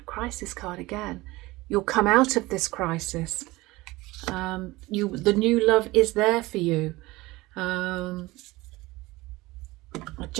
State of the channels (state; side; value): quieter; left; 20.3 dB